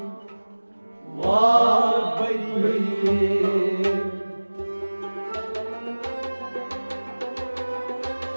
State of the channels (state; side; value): inverted; both; correlation -1.00